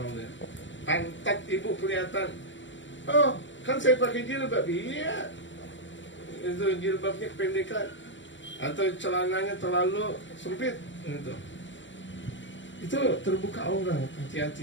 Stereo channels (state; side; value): late; right; 0.54 ms